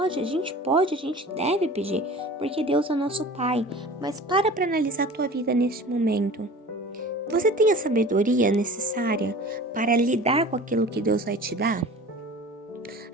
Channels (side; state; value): both; normal; correlation 0.40